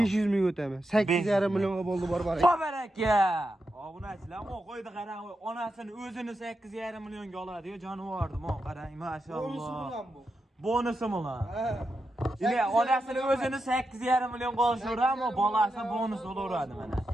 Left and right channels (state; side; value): normal; both; correlation 0.87